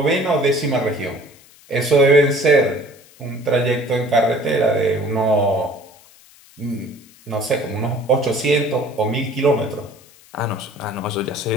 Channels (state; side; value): noise; left; hiss, 26 dB below the sound